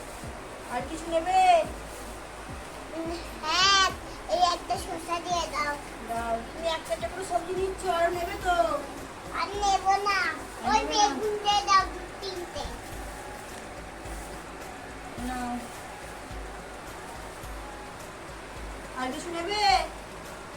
আর কিছু নেবে? হ্যাঁ এই একটা শসা দিয়ে দাও। দাও। তুমি একটা একটা করে সবজি নিচ্ছ, আরো নেবে তো? আর নেব না। ওই নেবে না? বেগুন দিয়ে দাও 3টে। নাও। আর কিছু নেবে?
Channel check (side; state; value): both; identical; correlation 1.00